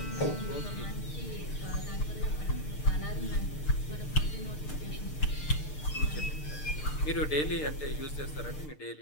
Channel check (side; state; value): right; late; 6.6 ms